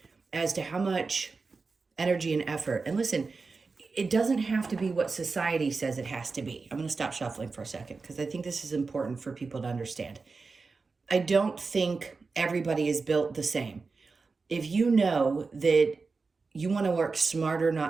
as to how much energy and effort. And listen, it doesn't have to be what society says it has to be. I'm going to stop shuffling for a second because I think this is important for people to understand. I don't think everybody is built the same. If you know that you want to work smarter,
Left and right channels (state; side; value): quieter; left; 4.3 dB